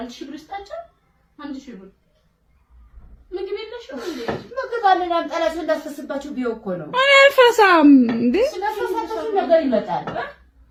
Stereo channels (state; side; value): identical; both; correlation 1.00